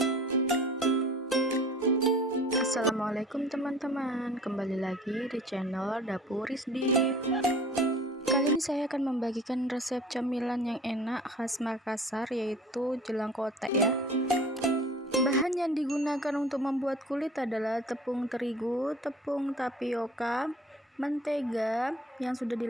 teman-teman, kembali lagi di channel Dapur Rizdi. Kali ini saya akan membagikan resep camilan yang enak khas Makassar, yaitu jelang kotek ya. Bahan yang digunakan untuk membuat kulit adalah tepung terigu, tepung tapioka, mentega yang sudah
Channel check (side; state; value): both; normal; correlation 0.45